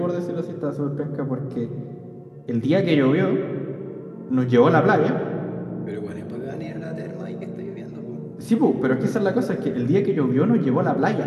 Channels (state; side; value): identical; both; correlation 1.00